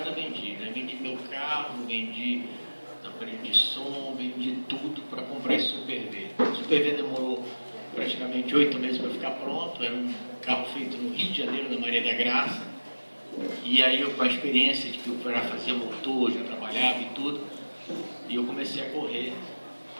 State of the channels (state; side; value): inverted; both; correlation -1.00